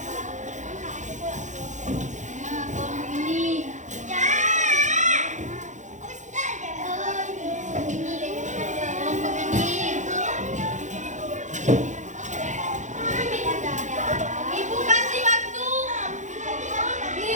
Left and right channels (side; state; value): left; late; 0.35 ms